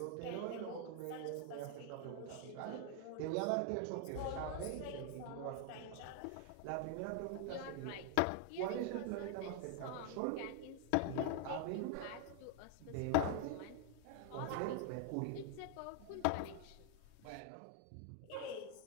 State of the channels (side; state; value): both; different; correlation 0.00